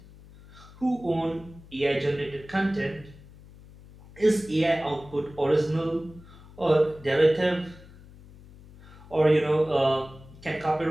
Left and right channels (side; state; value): left; noise; hum, 21 dB below the sound